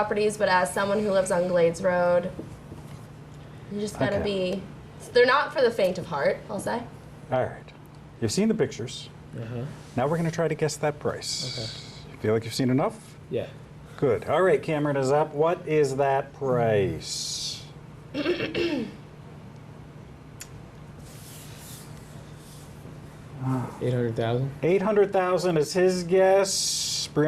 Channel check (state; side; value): identical; both; correlation 1.00